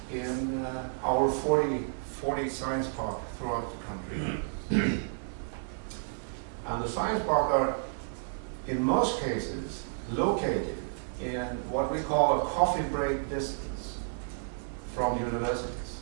our 40 science parks throughout the country. And the science parks are, in most cases, located in what we call a coffee break distance from universities.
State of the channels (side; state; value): left; silent; digital silence